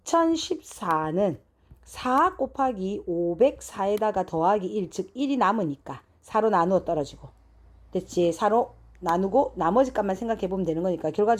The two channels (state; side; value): identical; both; correlation 1.00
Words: 4 곱하기 504에다가 더하기 1, 즉 1이 남으니까 4로 나누어 떨어지고 됐지? 4로 나누고 나머지 값만 생각해 보면 되는 거니까